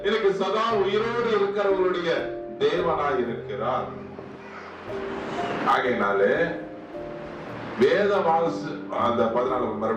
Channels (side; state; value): both; identical; correlation 1.00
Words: எனக்கு சதா உயிரோடு இருக்கிறவர்களுடைய தேவனாய் இருக்கிறார். ஆகையினாலே வேத வாசி அந்த 14